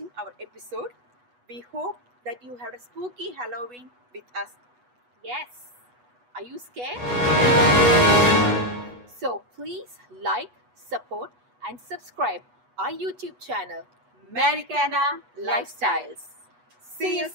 our episode. We hope that you had a spooky Halloween with us. Yes. Are you scared? So please like, support and subscribe our YouTube channel, Americana Lifestyles. See you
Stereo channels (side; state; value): left; late; 8.2 ms